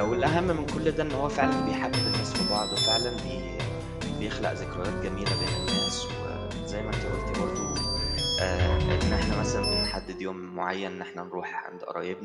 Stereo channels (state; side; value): identical; both; correlation 1.00